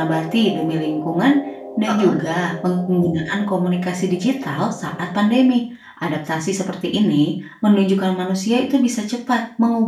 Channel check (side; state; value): both; identical; correlation 1.00